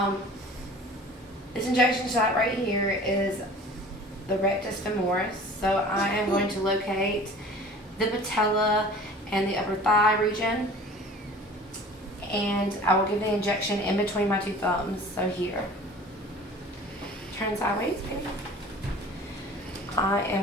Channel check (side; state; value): both; normal; correlation 0.44